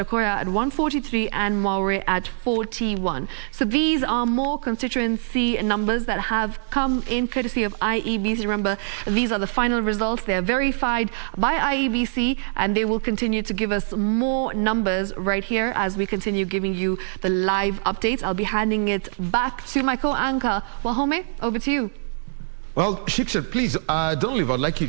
at 143, and Maure at 41. So these are more constituency numbers that have come in courtesy of IEBC. Remember, these are the final results. They are verified by IEBC, and they will continue to give us more numbers right here as we continue giving you the live updates. I'll be handing it back to my co-anchor, Wahome. Over to you. Well, Shiksha, please don't leave. I'd like you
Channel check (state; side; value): silent; left; digital silence